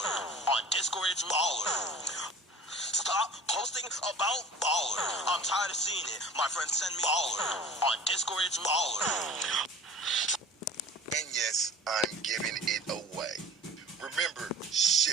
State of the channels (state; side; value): normal; both; correlation 0.42